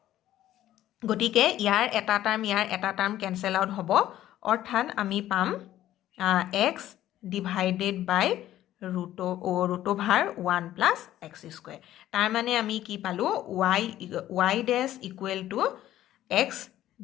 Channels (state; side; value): quieter; right; 13.2 dB